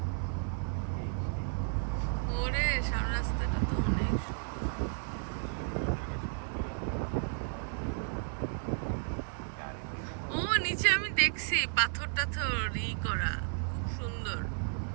ওরে সামনে রাস্তাটা তো অনেক ও নিচে আমি দেখছি পাথর টাথর করা, খুব সুন্দর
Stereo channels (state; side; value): silent; left; 56 dB below the other